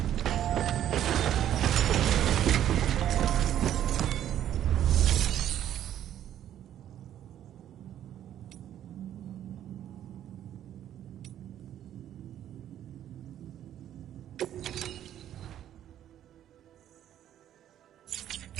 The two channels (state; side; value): quieter; left; 11.1 dB